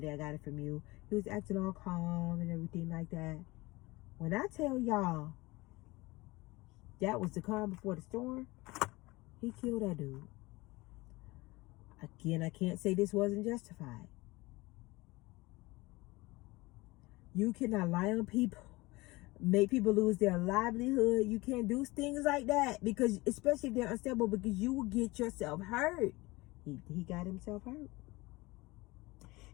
I got it from you. He was acting all calm and everything like that. When I tell y'all that was the calm before the storm, he killed that dude. Again, I can't say this wasn't justified. You cannot lie on people, make people lose their livelihood. You can't do things like that, because especially if they're unstable, because you will get yourself hurt. He got himself hurt.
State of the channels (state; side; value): quieter; right; 21.9 dB